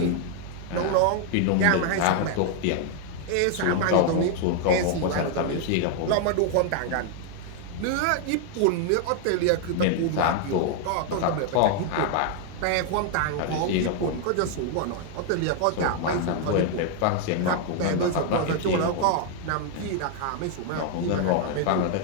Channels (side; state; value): both; different; correlation 0.00